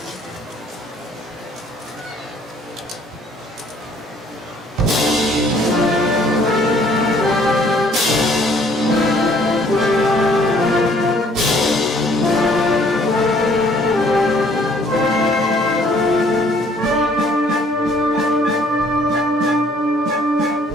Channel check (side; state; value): both; normal; correlation 0.60